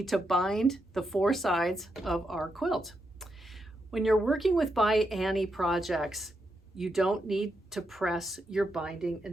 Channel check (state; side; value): normal; both; correlation 0.83